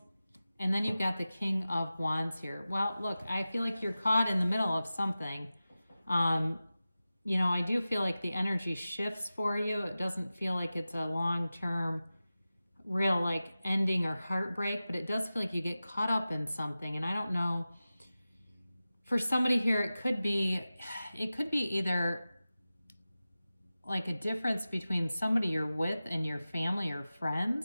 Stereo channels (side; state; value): both; inverted; correlation -0.95